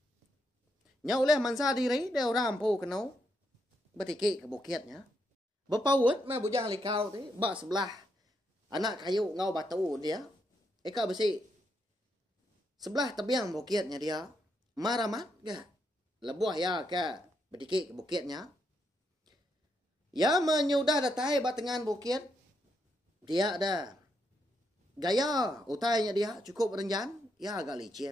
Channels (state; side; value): normal; both; correlation 0.79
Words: Nyau leh mansa diri dia orang rampu kenau. Bertiki ke bukitnya. Berpaut mah bujang likau tu bak sebelah anak kayu ngau batu dia. Eka besi sebelah tebiang bukitnya dia. Maramat ke lebuah ya ke bertiki ke bukitnya. Ya menyudah datai batengan bukit. Dia ada gaya utainya dia cukup renjan. Ya agak